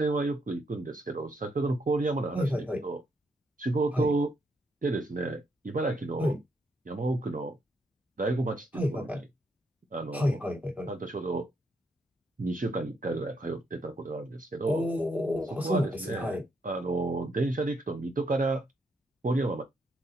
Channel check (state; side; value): normal; both; correlation 0.76